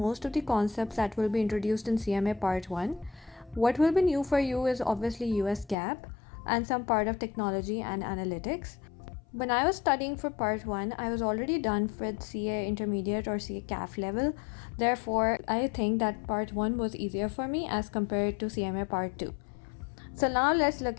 of the concepts that will be introduced in CMA Part 1. What will be new for you is obviously US GAAP and some part of technology and analytics. When I was studying for Part 1, I was already done with CA Intermediate or CA CAF level. Therefore, I think that Part 1 was easier for me as compared to CMA Part 2. So now let's look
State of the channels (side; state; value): right; drops out; at 5.8 s